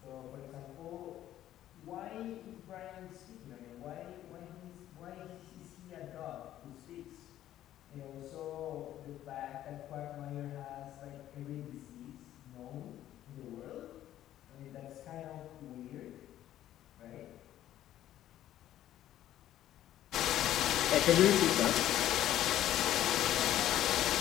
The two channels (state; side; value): quieter; right; 12.7 dB